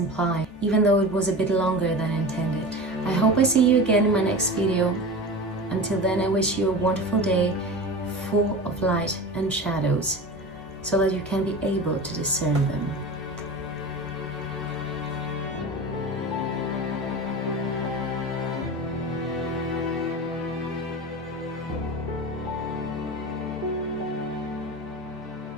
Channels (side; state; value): both; normal; correlation 0.30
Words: even though it was a bit longer than intended. I hope I see you again in my next video. Until then, I wish you a wonderful day full of light and shadows, so that you can be able to discern them.